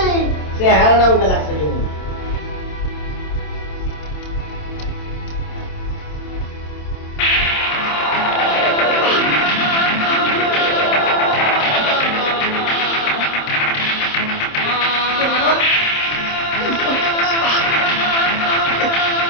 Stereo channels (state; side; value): late; right; 27 ms